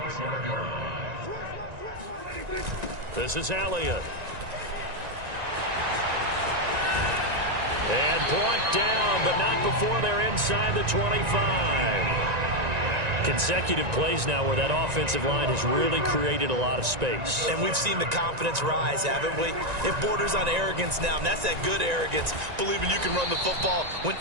This is Elliott. And brought down, but not before they're inside the 25. Consecutive plays now where that offensive line has really created a lot of space. And we've seen the confidence rise, haven't we? It borders on arrogance now, and that's that good arrogance, believing you can run the football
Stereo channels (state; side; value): late; left; 1.9 ms